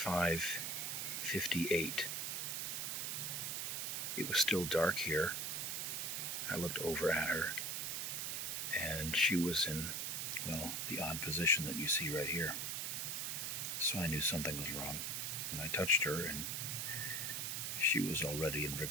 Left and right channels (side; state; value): right; noise; hiss, 1 dB below the sound